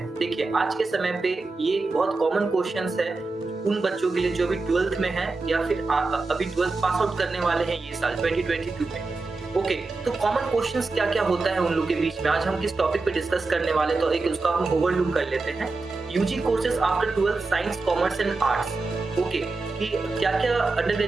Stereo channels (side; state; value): left; quieter; 3.7 dB